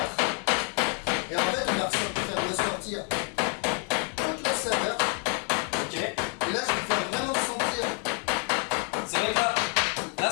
Et en fait, on va faire ressortir toute la saveur. Ok. Et là, je vais faire vraiment sentir. C'est vrai que là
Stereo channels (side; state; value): right; quieter; 39.0 dB